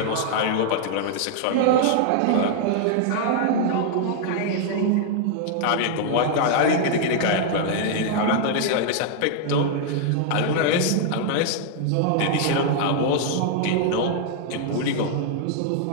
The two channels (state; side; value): different; both; correlation 0.00